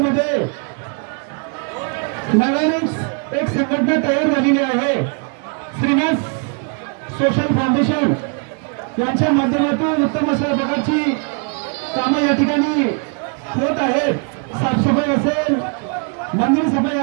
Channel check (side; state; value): left; quieter; 38.6 dB